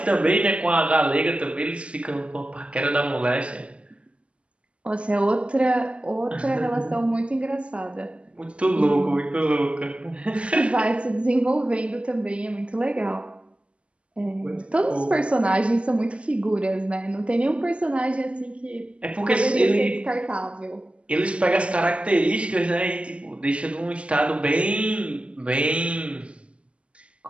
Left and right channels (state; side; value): late; left; 0.058 ms